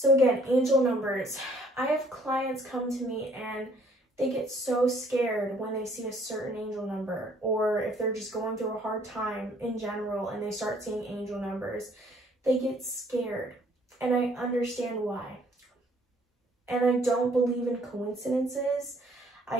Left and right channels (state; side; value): normal; both; correlation 0.61